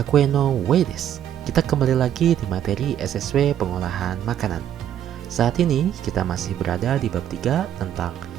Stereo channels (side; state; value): left; quieter; 10.4 dB